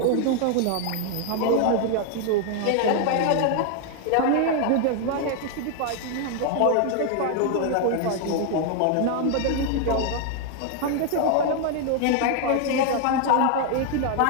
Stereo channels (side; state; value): both; different; correlation 0.00